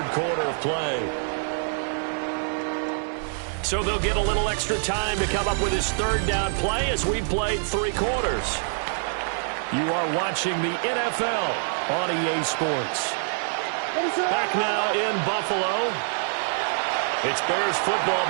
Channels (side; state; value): left; silent; 56 dB below the other